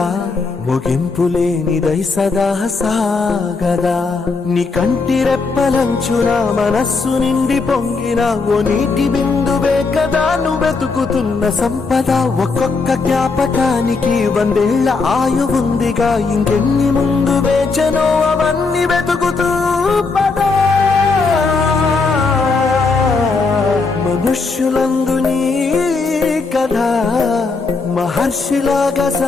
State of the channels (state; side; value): quieter; right; 4.2 dB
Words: ముగింపులేనిదై సదా సాగదా. నీ కంటి రెప్పలంచున మనస్సు నిండి పొంగిన ఓ నీటి బిందువే కదా నువ్వు వెతుకుతున్న సంపద. ఒక్కొక్క జ్ఞాపకానికి 100 ఏళ్ల ఆయువుందిగా, ఇంకెన్ని ముందు వేచనో అవన్నీ వెతుకుతూ పదా. మనుష్యులందు నీ కథ మహర్షిలాగా